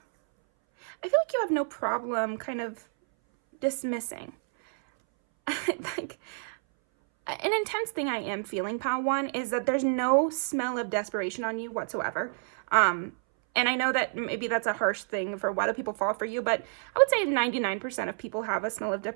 I feel like you have no problem kind of dismissing. Like, an intense thing I am feeling, pile 1, is that there's no smell of desperation on you whatsoever. And I know that maybe that's a harsh thing for why do people fall for you, but I would say 99% of people have a smell of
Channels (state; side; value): silent; left; 59 dB below the other